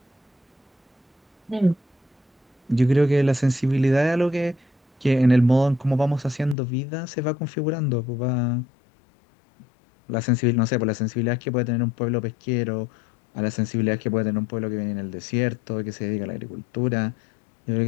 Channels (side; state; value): right; drops out; at 6.6 s